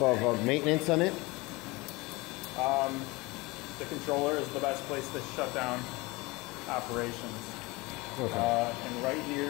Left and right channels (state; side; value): quieter; right; 23.5 dB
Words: of maintenance on it? The controller is the best place to shut down operations. Okay. And right